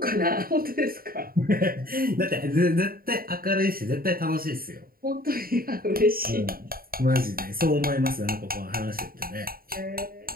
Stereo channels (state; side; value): late; left; 0.43 ms